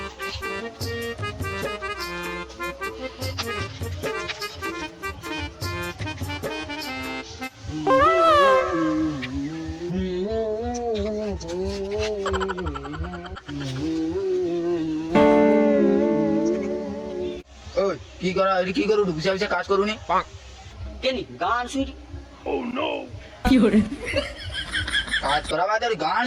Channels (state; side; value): identical; both; correlation 1.00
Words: কি করা কি করু বুঝা বুঝা কাজ করুনি কেনি গান শুনি কি করে কাজ করা বাদে গান